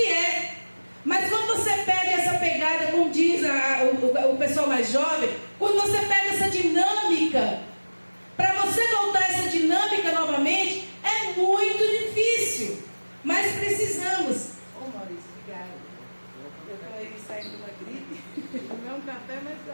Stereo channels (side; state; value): both; inverted; correlation -1.00